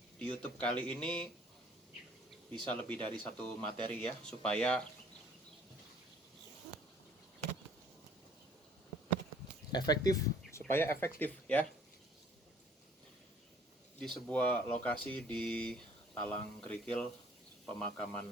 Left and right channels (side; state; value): both; normal; correlation 0.56